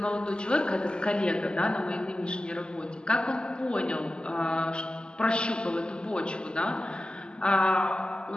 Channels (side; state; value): right; late; 0.050 ms